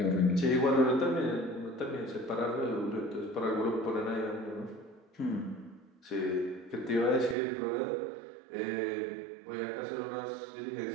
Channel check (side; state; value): left; drops out; at 7.4 s